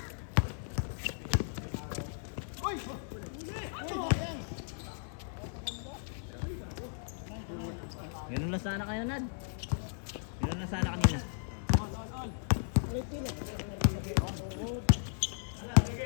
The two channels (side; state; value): right; silent; digital silence